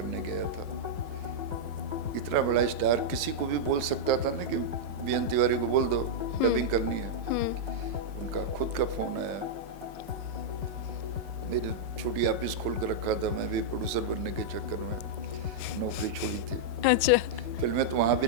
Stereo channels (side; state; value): left; late; 4.9 ms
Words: गया था। इतना बड़ा स्टार किसी को भी बोल सकता था ना कि बीएन तिवारी को बोल दो डबिंग करनी है। उनका खुद का फ़ोन आया, मेरी छोटी ऑफिस खोल कर रखा था, मैं भी प्रोड्यूसर बनने के चक्कर में नौकरी छोड़ी थी। अच्छा। फिल्में तो वहाँ भी